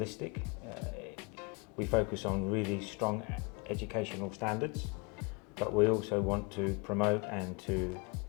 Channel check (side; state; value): right; quieter; 30.2 dB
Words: We focus on really strong educational standards, but we also want to promote and to